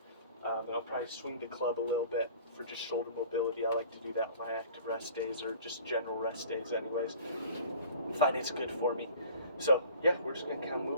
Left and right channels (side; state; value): both; inverted; correlation -0.46